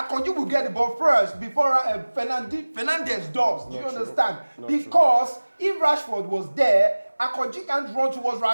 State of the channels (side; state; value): both; inverted; correlation -1.00